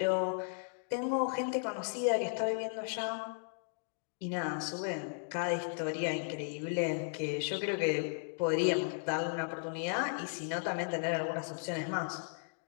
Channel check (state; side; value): silent; right; digital silence